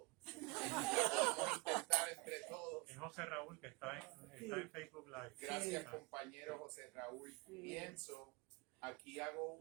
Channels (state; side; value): quieter; left; 25.5 dB